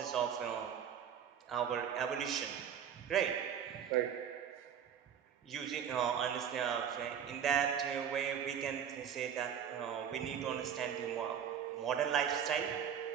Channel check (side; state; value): left; quieter; 8.3 dB